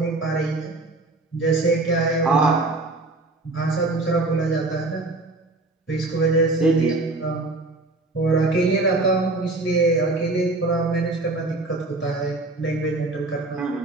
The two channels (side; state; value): left; quieter; 3.0 dB